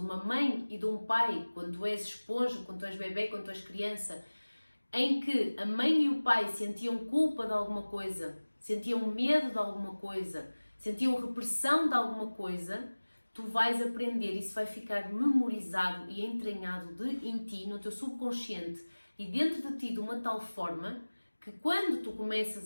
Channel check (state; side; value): inverted; both; correlation -1.00